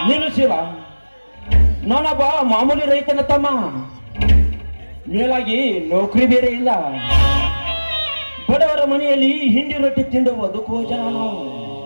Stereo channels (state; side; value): inverted; both; correlation -1.00